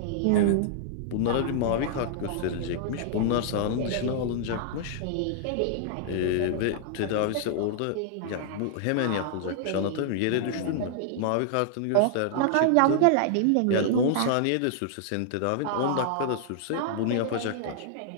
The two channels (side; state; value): both; different; correlation -0.01